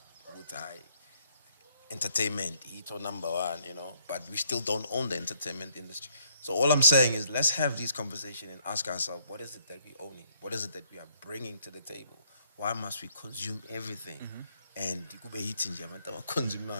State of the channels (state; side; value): inverted; both; correlation -0.69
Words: with our entertainment? He's number one, but we still don't own the entertainment industry. So all I'm saying is, let's have these conversations and ask ourselves, what is it that we own? What is it that we are bringing to the table? Why must we consume everything? And